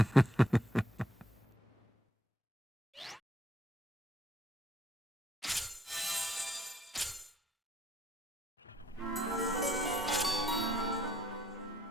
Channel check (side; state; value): both; normal; correlation 0.69